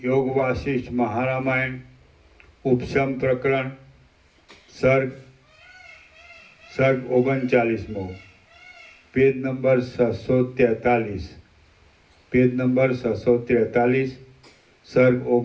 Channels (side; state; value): both; identical; correlation 1.00